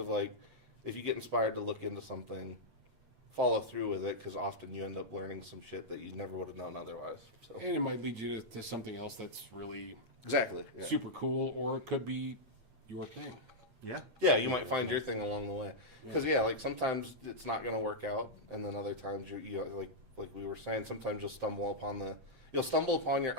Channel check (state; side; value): late; left; 8.6 ms